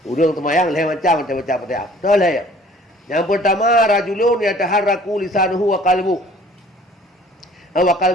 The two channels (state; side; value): normal; both; correlation 0.53